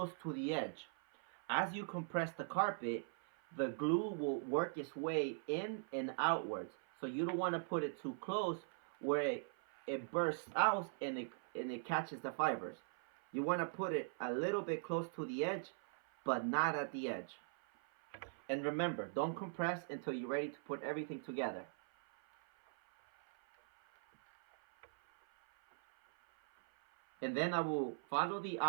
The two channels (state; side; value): silent; left; 51 dB below the other